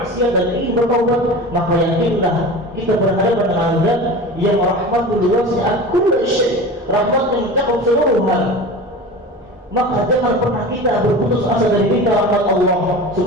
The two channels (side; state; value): both; normal; correlation 0.32